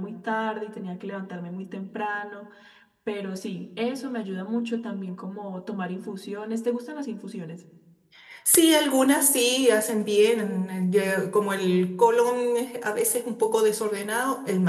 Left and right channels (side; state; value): both; identical; correlation 1.00